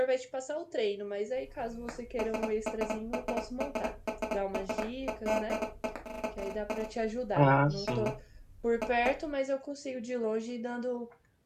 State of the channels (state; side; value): identical; both; correlation 1.00